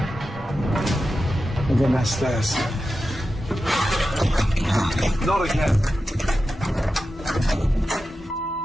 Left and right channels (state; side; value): normal; both; correlation 0.92